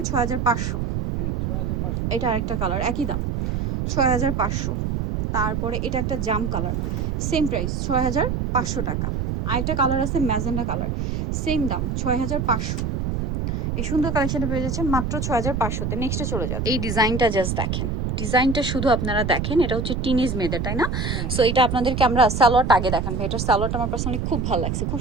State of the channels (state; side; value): noise; right; rumble, 1 dB below the sound